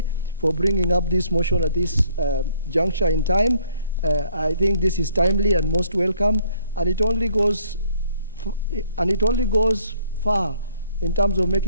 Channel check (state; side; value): inverted; both; correlation -0.63